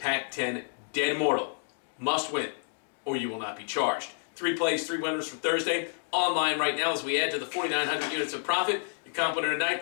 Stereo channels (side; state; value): right; silent; digital silence